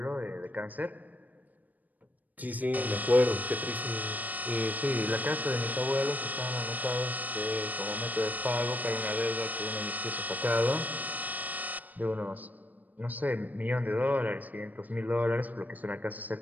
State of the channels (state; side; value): late; left; 0.081 ms